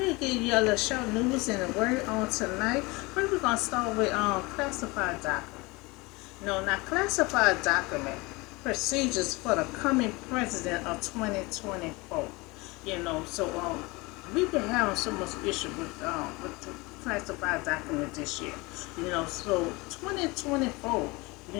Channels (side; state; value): right; quieter; 24.5 dB